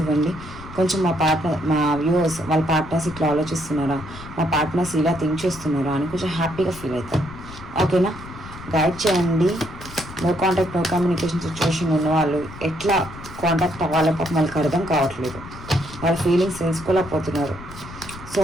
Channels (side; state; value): left; noise; rumble, 15 dB below the sound